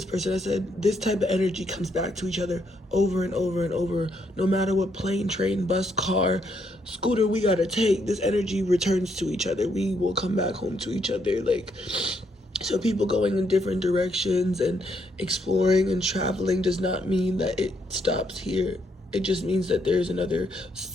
person, I said, this type of energy comes back to each other over and over and over. No matter what plane, train, bus, car, scooter we gotta take, this energy returns to each other. We will come back home to each other. Like, so people going in different directions and exploring and traveling does not mean that it stops here. It just means that there's another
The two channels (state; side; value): normal; both; correlation 0.75